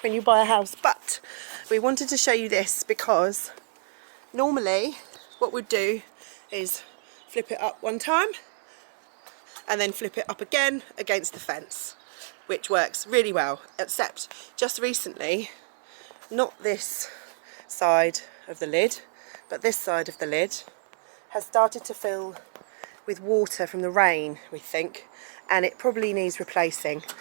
when you buy a house, but we wanted to show you this because normally what we'd do is flip it up one time and then flip it up again against the fence, which works really well, except just recently, not this side of the lid, but this side of the lid has started to fill with water from the rain, we think, and it probably needs replacing.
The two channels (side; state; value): left; silent; digital silence